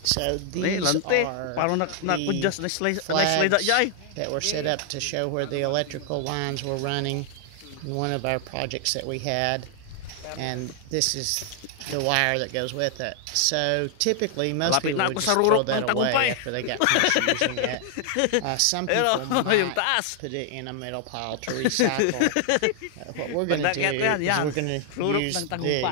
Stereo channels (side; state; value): both; different; correlation 0.00